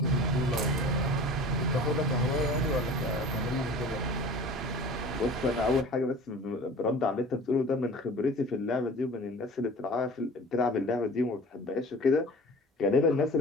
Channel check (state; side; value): normal; both; correlation 0.42